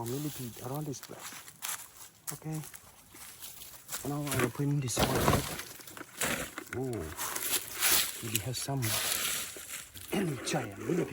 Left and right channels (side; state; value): both; identical; correlation 1.00